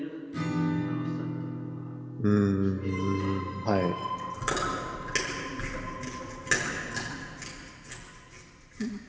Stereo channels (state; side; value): identical; both; correlation 1.00